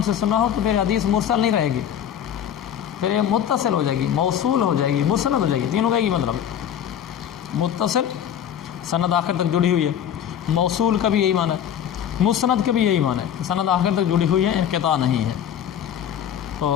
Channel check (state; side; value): quieter; right; 9.4 dB